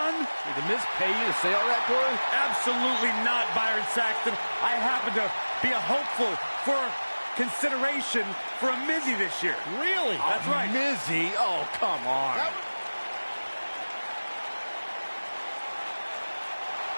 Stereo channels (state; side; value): inverted; both; correlation -1.00